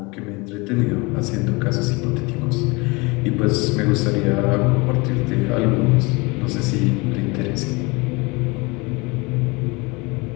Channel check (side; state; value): right; quieter; 26.4 dB